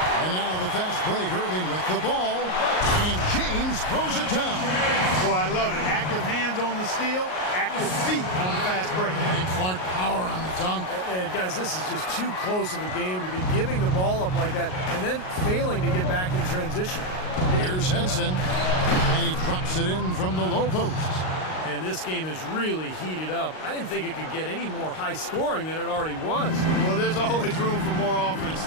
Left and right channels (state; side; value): late; right; 38 ms